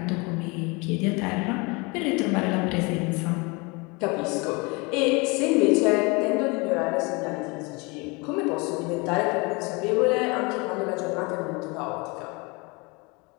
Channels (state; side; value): quieter; right; 27.8 dB